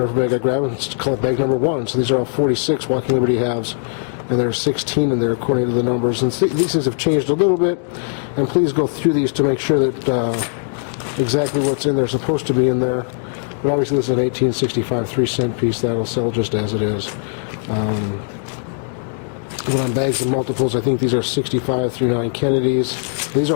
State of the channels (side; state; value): right; silent; 66 dB below the other